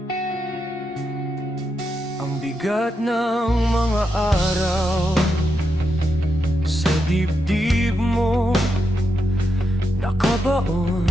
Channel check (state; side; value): normal; both; correlation 0.84